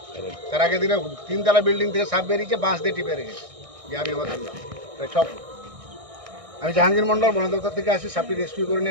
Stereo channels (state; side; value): late; left; 1.6 ms